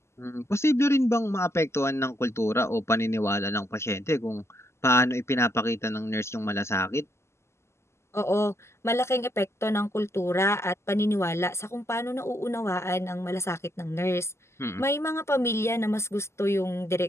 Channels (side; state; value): right; late; 0.13 ms